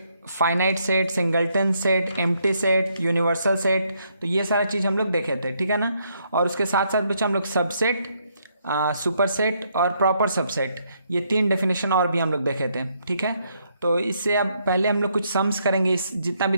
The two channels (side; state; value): both; inverted; correlation -0.74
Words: finite set, singleton set, empty set, universal set, तो ये सारा चीज़ हम लोग देखे थे, ठीक है ना। और उसके साथ साथ बच्चा हम लोग सबसेट, सुपर सेट और प्रॉपर सबसेट, ये तीन डेफिनेशन और भी हम लोग देखे थे, ठीक है। तो इससे अब पहले हम लोग कुछ सम्स करेंगे, इस जितना भी